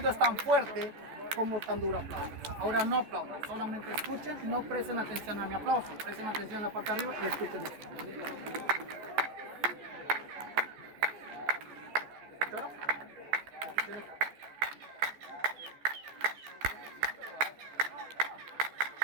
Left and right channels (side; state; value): left; late; 14 ms